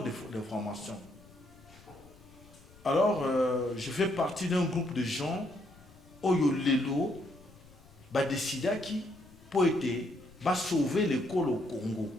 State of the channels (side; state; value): left; noise; rumble, 24 dB below the sound